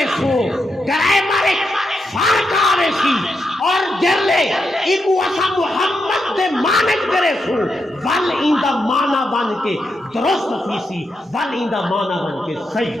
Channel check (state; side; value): normal; both; correlation 0.84